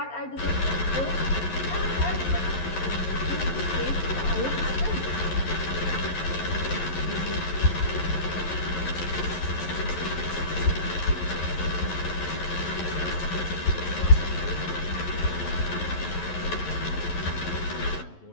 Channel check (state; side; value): late; right; 11 ms